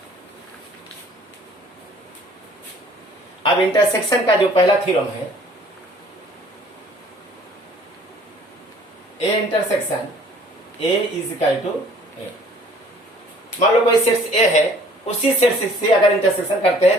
अब इंटरसेक्शन का जो पहला थ्योरम है, A intersection A is equal to A. मान लो कोई सेट ए है, उसी सेट से अगर इंटरसेक्शन करते हैं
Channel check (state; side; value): normal; both; correlation 0.55